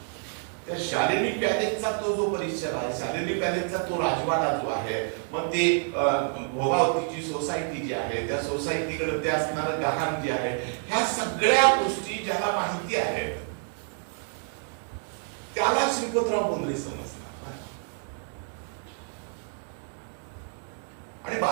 त्या शालिनी पॅलेसचा तो जो परिसर आहे, शालिनी पॅलेसचा तो राजवाडा जो आहे, मग ते भोगावतीची सोसायटी जी आहे, त्या सोसायटीकडे ते असणारं गहाण जे आहे, ह्या सगळ्या गोष्टी ज्याला माहिती आहेत त्याला श्रीपतराव बोंद्रे समजणार. आणि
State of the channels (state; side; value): silent; left; 55 dB below the other